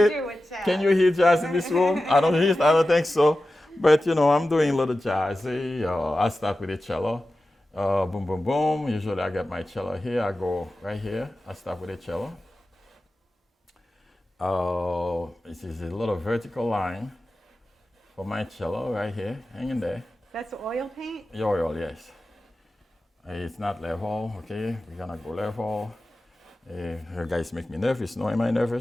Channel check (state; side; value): normal; both; correlation 0.94